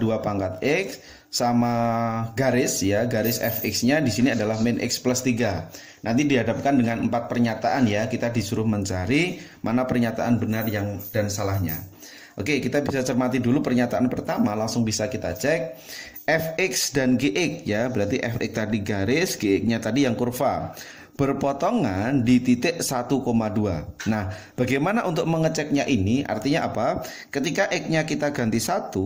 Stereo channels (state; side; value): identical; both; correlation 1.00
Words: pangkat x sama garis ya, garis fx-nya di sini adalah min x plus 3. Nanti dihadapkan dengan 4 pernyataan ya, kita disuruh mencari mana pernyataan benar yang dan salahnya. Oke, kita bisa cermati dulu pernyataan pertama, langsung bisa kita cek. Fx dan gx ya, berarti fx tadi garis, gx-nya tadi yang kurva, berpotongan di titik 1,2. Nah, bagaimana untuk mengeceknya ini? Artinya apa? Ketika x-nya kita ganti